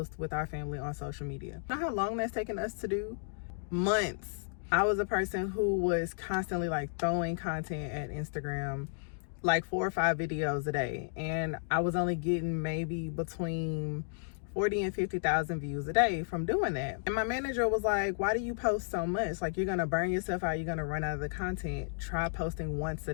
with our family on social media. You know how long that's taken us to do? Months. I was a person who was constantly like throwing content at Instagram, like 4 or 5 videos a day, and I was only getting maybe between 40 and 50,000 views a day from doing that. And my manager was like, why do you post so much? Like, you're gonna burn yourself out, you're gonna run out of the content. Try posting once a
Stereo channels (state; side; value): silent; right; digital silence